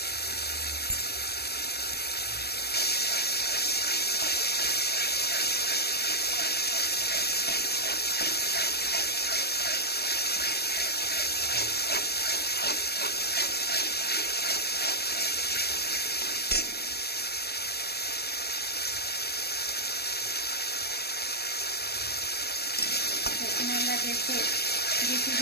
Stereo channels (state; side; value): late; right; 0.47 ms